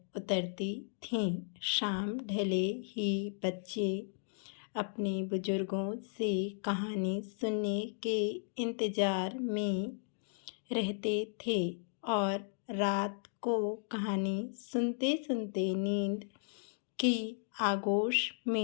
उतरती थीं। शाम ढले ही बच्चे अपने बुजुर्गों से कहानी सुनने के इंतज़ार में रहते थे और रात को कहानी सुनते सुनते नींद की आगोश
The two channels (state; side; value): silent; right; digital silence